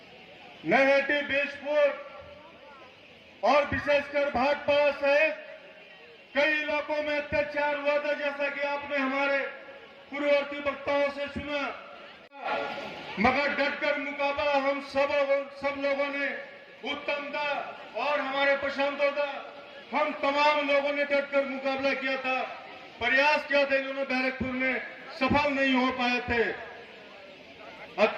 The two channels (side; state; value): both; identical; correlation 1.00